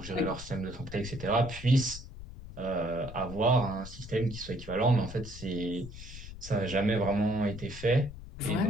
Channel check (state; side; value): noise; left; rumble, 13 dB below the sound